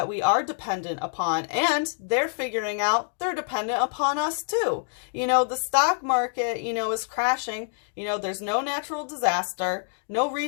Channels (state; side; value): silent; right; digital silence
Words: we are dependent upon, and they're figuring out they're dependent upon us too. You know, the stock market, you know, is crashing. You know, there's no natural disaster, no